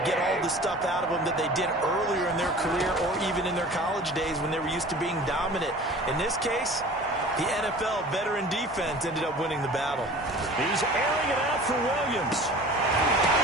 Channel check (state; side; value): normal; both; correlation 0.42